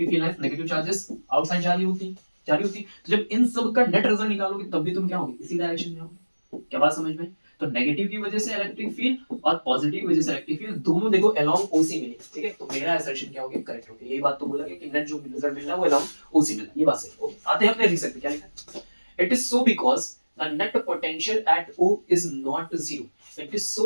field lines negative charges outside जा रही होती। तो जब इन सब का नेट रिजल्ट निकालोगे तब भी तुम क्या होगे, इसी डायरेक्शन में होगे। क्या बात समझ में? तो नेगेटिव की वजह से इलेक्ट्रिक फील्ड और पॉजिटिव की वजह से इलेक्ट्रिक फील्ड दोनों देखो अलोंग OC मिली, ठीक है। तो मेरा असर्शन क्या हो गया, करेक्ट हो गया। यही बात तो बोला गया कि नेट जो रिजल्ट मिल रहा है वो अलोंग OC मिल रहा है, ये बात सही। ओके, आते हैं अपने रीजन पे, क्या लिखा है, it is so because the net potential at O is not zero. It is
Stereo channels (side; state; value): both; inverted; correlation -1.00